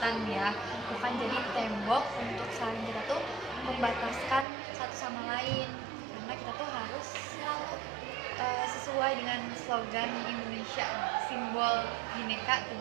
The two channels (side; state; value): left; drops out; at 4.5 s